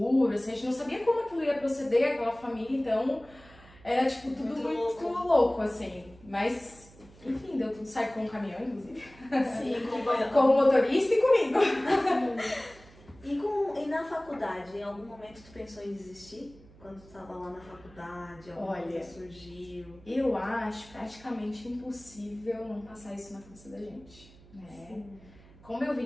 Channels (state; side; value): noise; right; hum, 23 dB below the sound